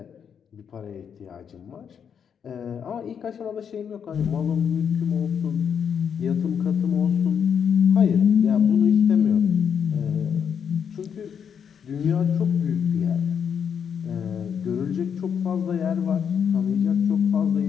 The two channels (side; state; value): right; quieter; 7.5 dB